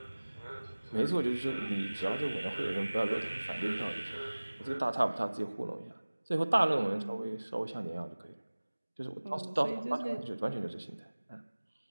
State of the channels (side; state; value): both; inverted; correlation -1.00